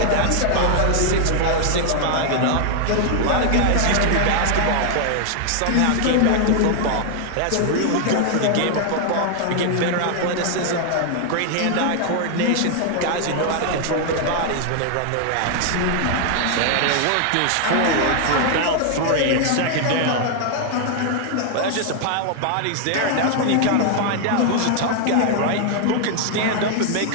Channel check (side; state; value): both; different; correlation 0.00